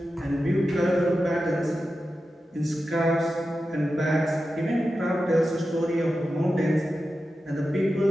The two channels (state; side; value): normal; both; correlation 0.92